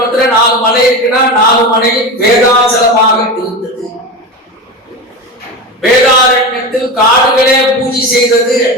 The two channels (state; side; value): normal; both; correlation 0.23